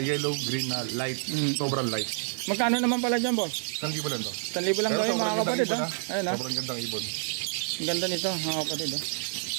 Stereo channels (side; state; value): left; silent; 58 dB below the other